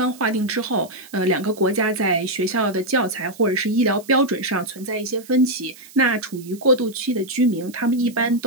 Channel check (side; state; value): right; noise; hiss, 21 dB below the sound